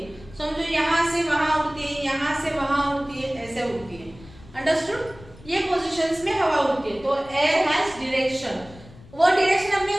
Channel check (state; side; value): noise; left; rumble, 21 dB below the sound